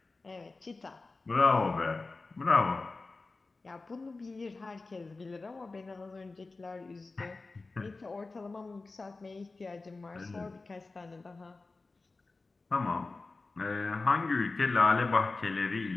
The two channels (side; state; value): right; quieter; 3.6 dB